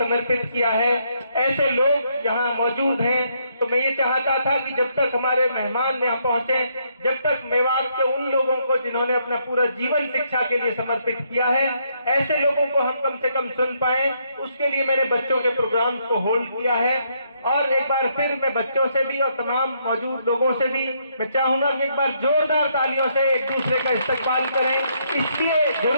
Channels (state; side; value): inverted; both; correlation -0.73